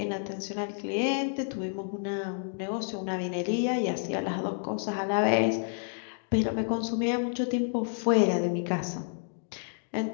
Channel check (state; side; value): silent; right; digital silence